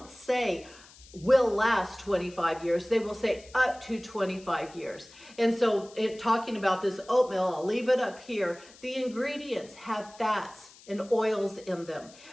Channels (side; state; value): left; noise; hiss, 22 dB below the sound